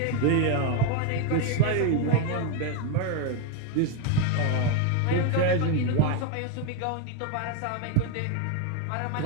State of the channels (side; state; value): both; different; correlation 0.01